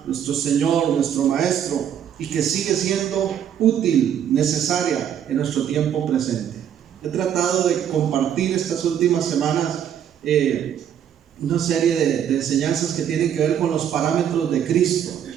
nuestro Señor, nuestro Maestro, y que sigue siendo útil, necesaria en nuestro tiempo presente. He tratado de compartir estas últimas semanas una serie de enseñanzas que tienen que ver con los parámetros de Cristo.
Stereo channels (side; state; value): left; quieter; 9.4 dB